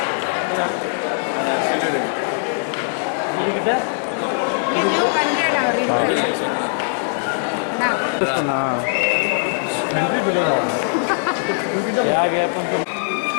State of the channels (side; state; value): right; silent; 65 dB below the other